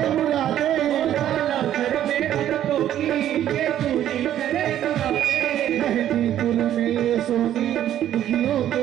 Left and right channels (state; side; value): quieter; left; 11.5 dB